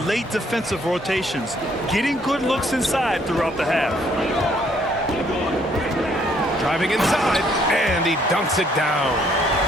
defensive rotations, getting good looks inside throughout the half. Driving inside, and he dunks it down.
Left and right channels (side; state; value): both; normal; correlation 0.66